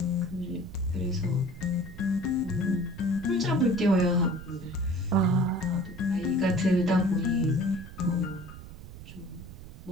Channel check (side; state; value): right; noise; rumble, 14 dB below the sound